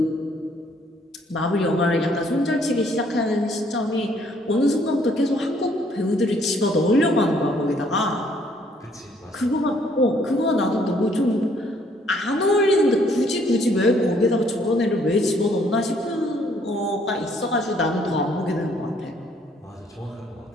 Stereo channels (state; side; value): normal; both; correlation 0.65